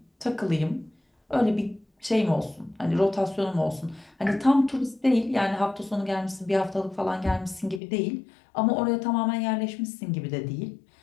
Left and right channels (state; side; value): drops out; right; at 7.8 s